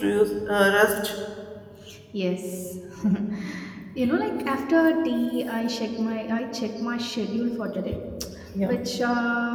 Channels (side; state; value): both; identical; correlation 1.00